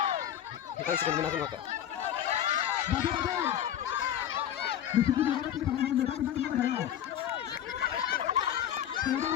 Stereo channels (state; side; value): quieter; right; 10.4 dB